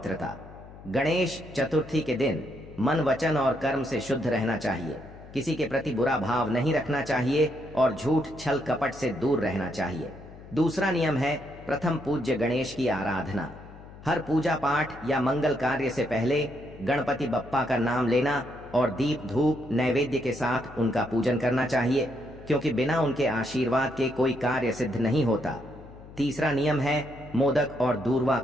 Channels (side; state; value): left; noise; hum, 18 dB below the sound